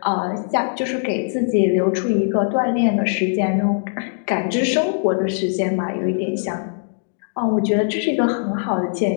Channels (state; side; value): silent; right; digital silence